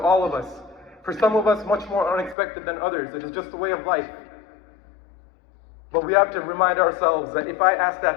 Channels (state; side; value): drops out; right; at 2.4 s